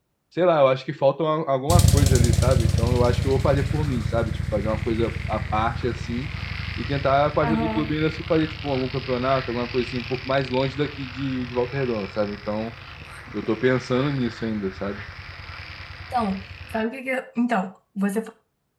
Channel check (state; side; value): identical; both; correlation 1.00